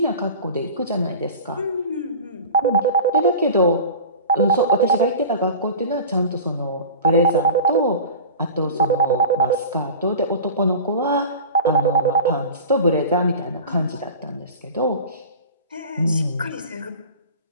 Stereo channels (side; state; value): both; inverted; correlation -0.35